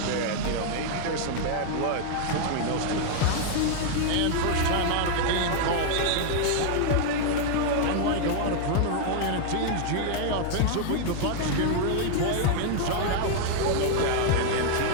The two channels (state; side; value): different; both; correlation 0.00